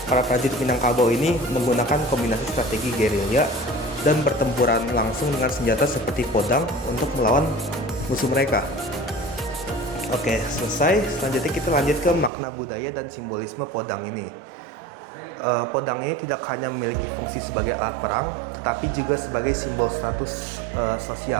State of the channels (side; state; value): left; drops out; at 12.3 s